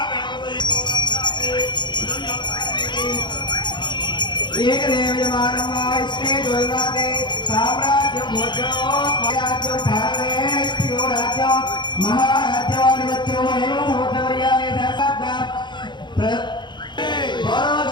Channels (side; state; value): right; late; 0.22 ms